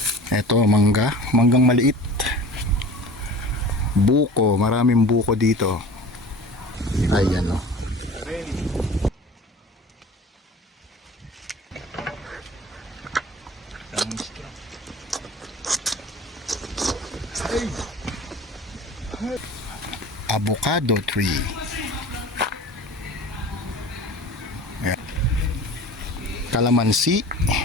Ito, manggang maliit. Buko, maraming buko dito. Ayan o. Avocado tree. Ayan. Kalamansi.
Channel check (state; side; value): normal; both; correlation 0.39